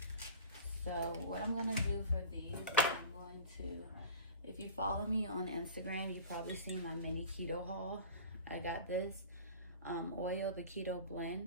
So what I'm gonna do for these is I'm going going to, if you follow me on Instagram, you probably seen my mini keto haul. I got this oil, the keto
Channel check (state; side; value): inverted; both; correlation -0.38